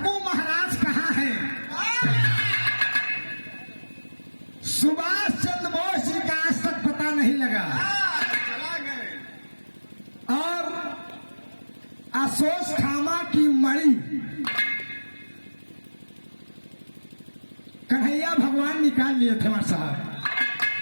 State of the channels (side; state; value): both; inverted; correlation -1.00